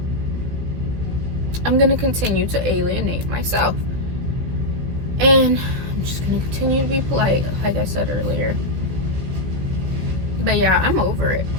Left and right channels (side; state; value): left; late; 16 ms